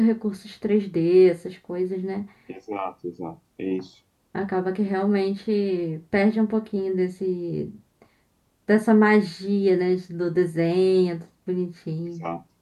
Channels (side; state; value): both; identical; correlation 1.00